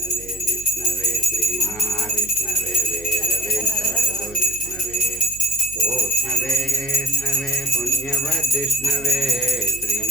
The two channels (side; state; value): right; noise; hum, 17 dB below the sound